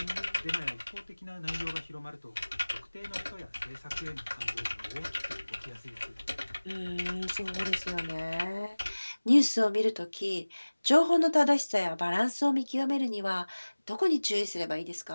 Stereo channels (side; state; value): both; inverted; correlation -1.00